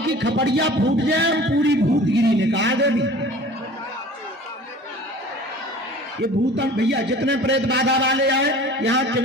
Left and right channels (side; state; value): both; normal; correlation 0.44